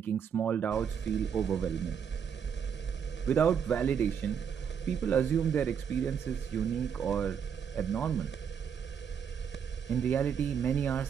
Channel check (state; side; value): quieter; left; 7.5 dB